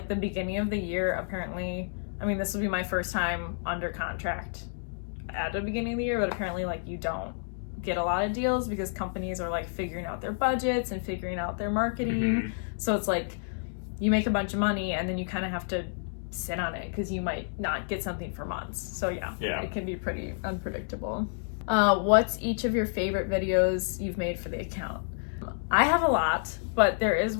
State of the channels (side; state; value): right; silent; digital silence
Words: the beginning of the year, apparently, I mean, this will be my first time under contract at the beginning of the year, but apparently like you don't get a lot of deals because companies are like figuring out their budgets and figuring out their marketing. So it's like you make a bunch of money and then you kind of have to sit on it because you might not get something for months. So yeah, it can be pretty unpredictable. What's each of your favorite videos you've made for the account? I have a lot, but there is